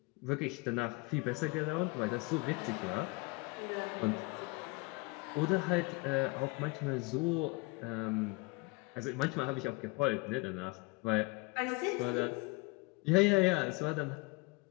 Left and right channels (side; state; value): right; quieter; 26.5 dB